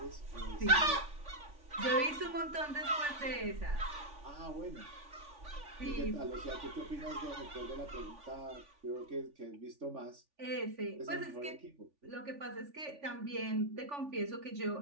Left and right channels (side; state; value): left; late; 3.5 ms